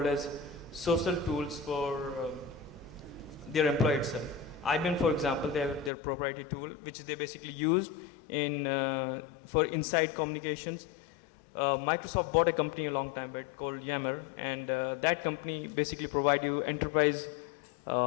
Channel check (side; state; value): right; drops out; at 5.9 s